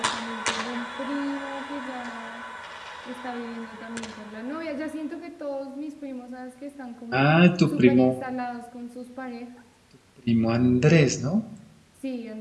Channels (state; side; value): identical; both; correlation 1.00